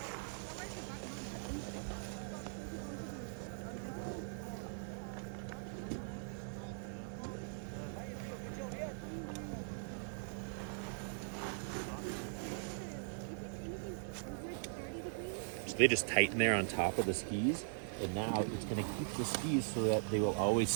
So they just tighten there on top of the skis, and now it's going to keep the skis so that they will always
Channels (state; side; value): silent; left; digital silence